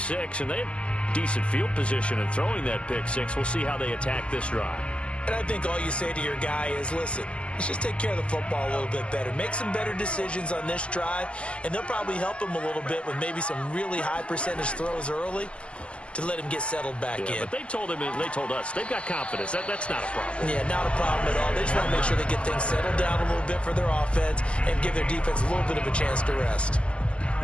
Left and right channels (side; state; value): right; late; 0.055 ms